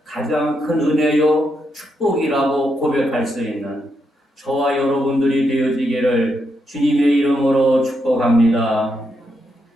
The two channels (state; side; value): normal; both; correlation 0.81